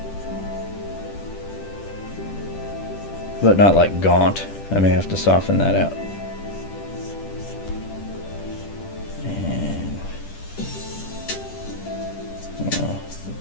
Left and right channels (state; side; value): late; right; 10 ms